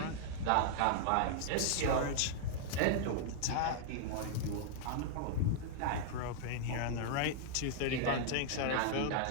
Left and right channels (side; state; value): both; different; correlation -0.01